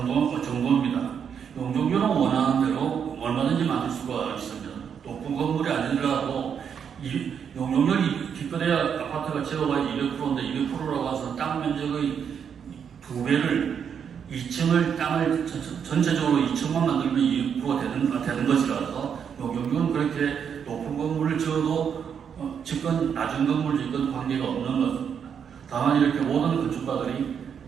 정도입니다. 용적률은 원하는 대로 얼마든지 만들 수가 있습니다. 높은 건물이 아니더라도 용적률이 기껏해야 아파트가 제로가 200%인데 200%라고 해서 땅 면적의 2배를 2층을 땅을 전체적으로 2층만 만들면 200% 되는 것이라서 용적률은 그렇게 높은 건물을 지어도 집건 낮은 건물 짓건 관계가 없는 것입니다. 다만 이렇게 모든 건축가들이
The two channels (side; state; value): left; quieter; 7.5 dB